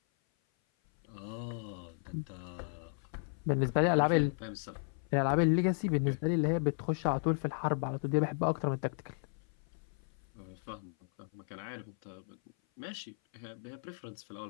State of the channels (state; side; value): silent; right; 54 dB below the other